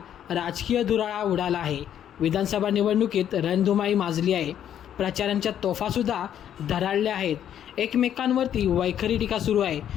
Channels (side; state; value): right; quieter; 10.0 dB